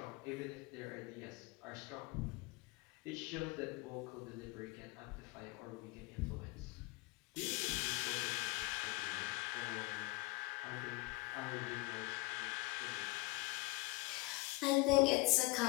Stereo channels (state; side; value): quieter; right; 22.4 dB